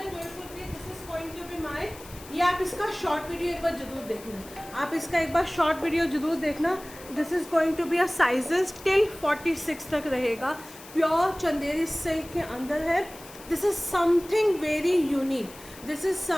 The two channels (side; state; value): left; noise; hiss, 18 dB below the sound